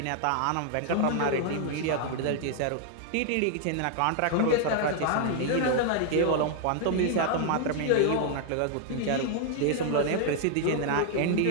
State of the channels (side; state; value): both; different; correlation 0.00